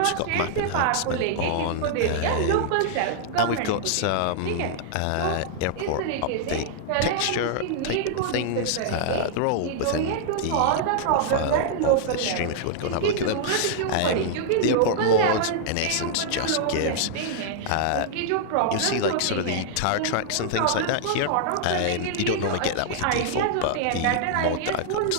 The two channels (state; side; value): different; both; correlation -0.01